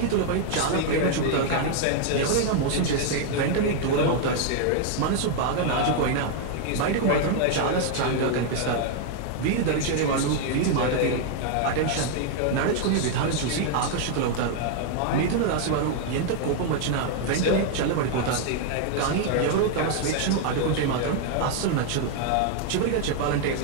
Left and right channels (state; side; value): different; both; correlation 0.00